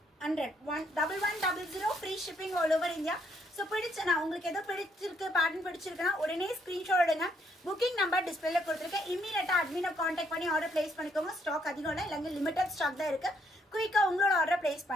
1100 free shipping all over India. So பிடிச்சனா உங்களுக்கு எதோ பிடிச்சிருக்கு பேட்டர்ன் பிடிச்சிருக்குன்னா உடனே ஸ்க்ரீன்ஷாட் எடுங்க. புக்கிங் நம்பர் டிஸ்பிளேல கொடுத்துருக்கேன். இமீடியட்டா அட்மினை கான்டாக்ட் பண்ணி ஆர்டர் பிளேஸ் பண்ணிக்கோங்க. ஸ்டாக் அதிகம் இல்லை, இல்லைங்க லிமிடெட் ஸ்டாக் தான் இருக்கு. குயிக்காக உங்களோட ஆர்டர் பிளேஸ்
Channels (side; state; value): both; normal; correlation 0.71